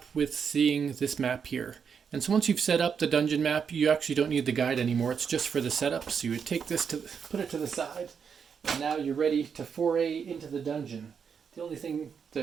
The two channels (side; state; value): left; quieter; 6.7 dB